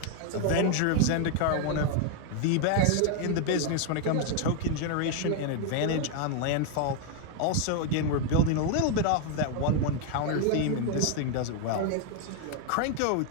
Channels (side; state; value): both; different; correlation 0.00